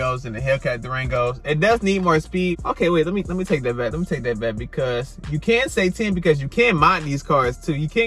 and the Hellcat Durangos. It does need more speed. Okay, wait, let me take that back. Let me take that back, because you can say 10, because you can mod these cars too. You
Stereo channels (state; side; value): identical; both; correlation 1.00